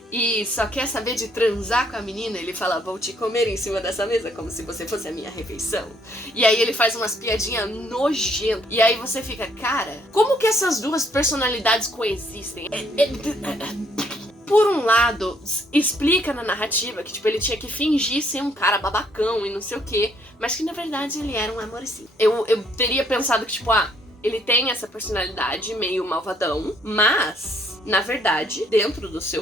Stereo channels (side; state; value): both; normal; correlation 0.67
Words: e só quer saber de transar com a menina. Ele fala, vou te comer em cima dessa mesa como se você fosse a minha refeição. E aí ele faz umas piadinhas nojentas. E aí você fica, cara, como que essas duas personalidades coexistem? Por um lado, explica na narrativa que, tipo, ele tinha que fingir ser um cara babacão e não sei o quê, mas que na verdade ele era um amorzinho. Eu teria pensado que, tipo, ele tem essa personalidade meio malvadão, mas na verdade, dentro do